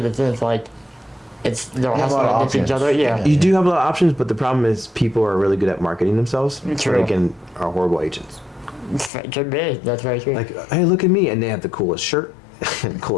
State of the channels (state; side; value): drops out; right; at 9.1 s